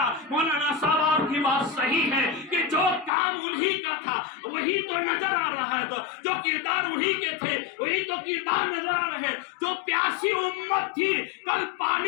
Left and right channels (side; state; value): right; drops out; at 3.1 s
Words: مولانا صاحب آپ کی بات صحیح ہے کہ جو کام انہی کا تھا وہی تو نظر آ رہا ہے، جو کردار انہی کے تھے وہی تو کردار نظر آ رہے ہیں۔ جو پیاسی امت تھی کل